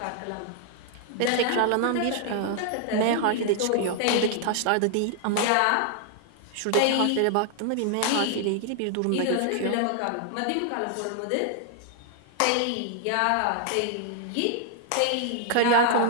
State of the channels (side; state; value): both; different; correlation 0.00